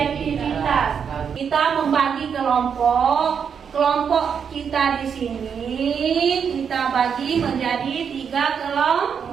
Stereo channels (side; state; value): left; quieter; 7.1 dB